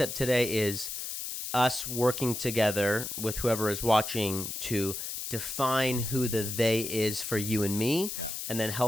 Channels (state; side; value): noise; left; hiss, 5 dB below the sound